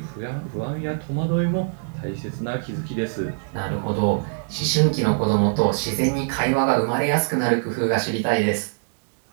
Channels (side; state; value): left; silent; digital silence